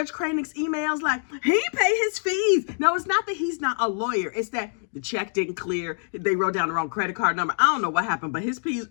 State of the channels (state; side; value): silent; right; 62 dB below the other